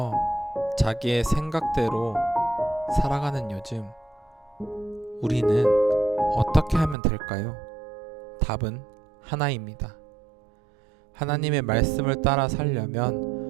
자기의 생각대로 살아가는 요즘 우리는 어떻게 하면 될까요? 답은 하나입니다. 하나님의 말씀을 따라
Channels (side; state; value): left; drops out; at 7.0 s